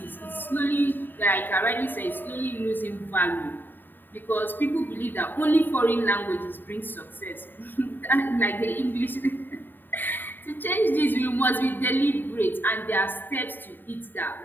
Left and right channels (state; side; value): late; right; 0.092 ms